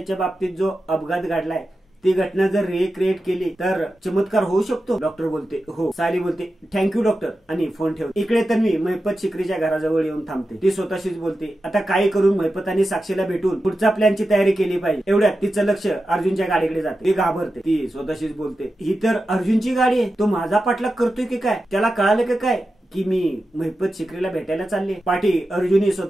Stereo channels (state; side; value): normal; both; correlation 0.91